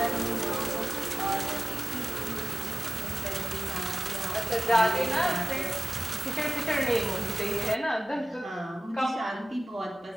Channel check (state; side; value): normal; both; correlation 0.96